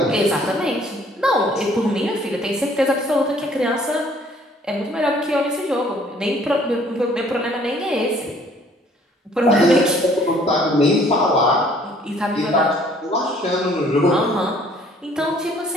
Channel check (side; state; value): both; normal; correlation 0.59